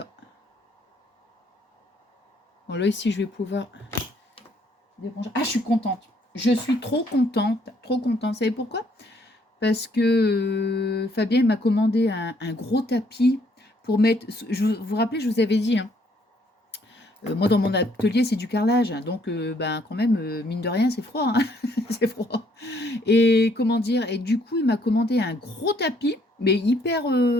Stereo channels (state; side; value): normal; both; correlation 0.66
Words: Bon, là, ici, je vais pouvoir... Ah, je suis contente. Je suis trop contente. Trop contente. Vous savez pourquoi? Parce que Fabien m'a commandé un gros tapis pour mettre... Vous vous rappelez, je vous avais dit... Hein, moi, dans mon atelier, c'est du carrelage. Donc, ben, quand même, mine de rien, c'est froid. Hein c'est froid. Et comment dire? Et du coup, il m'a commandé un gros tapis, mais hyper...